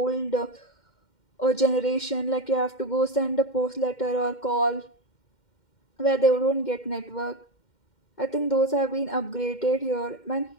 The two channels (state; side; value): late; right; 2.1 ms